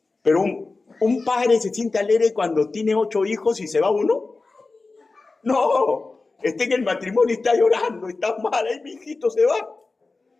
Pero un padre se siente alegre cuando tiene 8 hijos y se va uno. No, está en el matrimonio y está llorando, está mal, ahí mi hijito se va.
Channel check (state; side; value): quieter; right; 3.7 dB